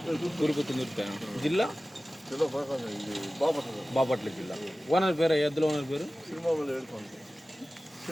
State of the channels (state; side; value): normal; both; correlation 0.96